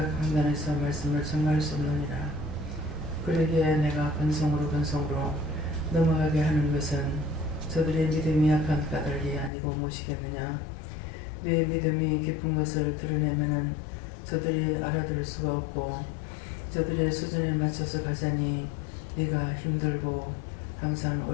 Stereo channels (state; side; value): drops out; right; at 9.5 s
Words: 강단에서 말씀을 전가할 수 없느니라. 그러기에 내가 건성으로 넘어가게 하는 것은 저들의 믿음이 약한 까닭이 아니고 무엇이겠느냐. 네 믿음이 깊은 것을 드러내면은 저들이 알아들을 수가 없고 저들의 수준에 맞춰서 가자니 네가 힘들고 항상